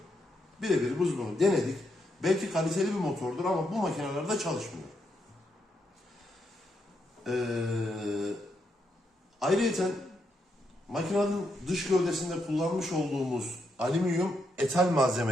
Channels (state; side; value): normal; both; correlation 0.80